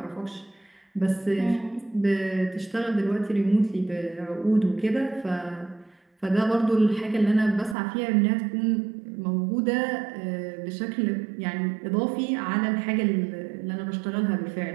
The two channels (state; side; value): drops out; left; at 7.8 s